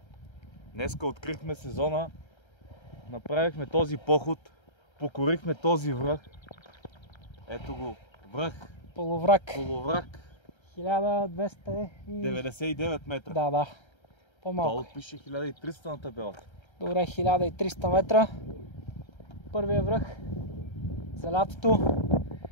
Днеска открихме сезона, направихме този поход, покорихме този връх. Ето го, връх, Полуврак. полуврак, 1299 метра. Да. По-малко. Долу пише 1300 на табелата. Добре, 1300 метра. Първия връх за лятото.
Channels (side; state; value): right; late; 1.3 ms